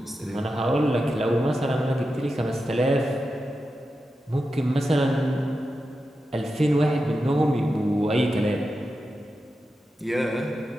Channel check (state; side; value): normal; both; correlation 0.90